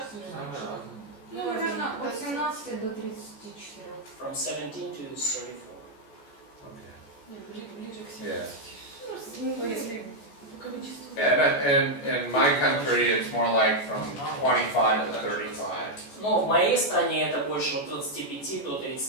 или раньше? Самое Ну, наверное, от 17 до 34. From 17 to 34. Okay. Ближе к Yeah. 70. Ну, если по количеству. And in my country, it's more like from 25 to 35. Но в моей стране это больше от 25 до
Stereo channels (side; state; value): right; late; 14 ms